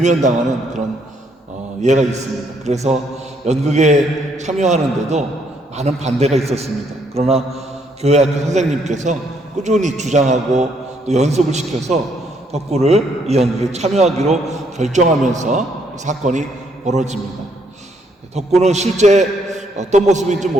그런 예가 있습니다. 그래서 연극에 참여하는데도 많은 반대가 있었습니다. 그러나 교회학교 선생님께서 꾸준히 주장하고 또 연습을 시켜서 덕구를 이 연극에 참여하기로 결정하면서 사건이 벌어집니다. 덕구는 실제 어떤 모습인지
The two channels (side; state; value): both; normal; correlation 0.71